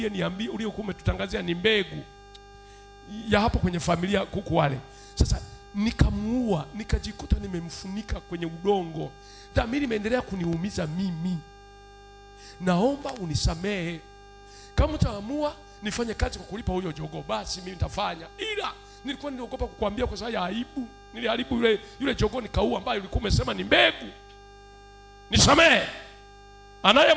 uliokuwa umetutangazia ni mbegu ya hapo kwenye familia kuku wale. Sasa nikamuua, nikajikuta nimemfunika kwenye udongo. Dhamiri imeendelea kuniumiza mimi. Naomba unisamehe. Kama utaamua nifanye kazi kwa kulipa huyo jogoo, basi mimi nitafanya. Ila nilikuwa niliogopa kukuambia kwa sababu ya aibu. Niliharibu yule jogoo nikaua, ambaye ulikuwa umesema ni mbegu. Nisamehe.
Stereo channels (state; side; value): identical; both; correlation 1.00